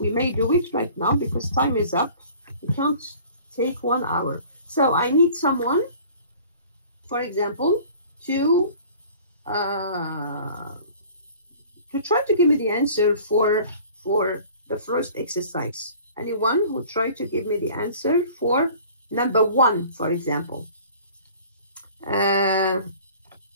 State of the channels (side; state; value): both; inverted; correlation -0.48